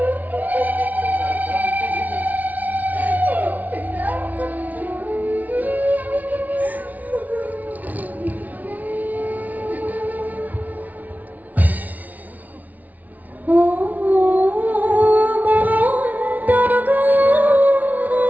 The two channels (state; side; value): late; left; 0.075 ms